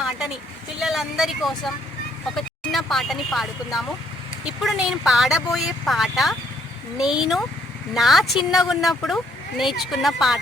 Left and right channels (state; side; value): normal; both; correlation 0.68